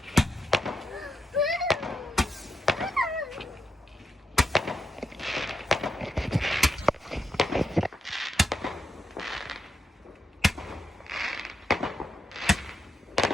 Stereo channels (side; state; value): both; normal; correlation 0.84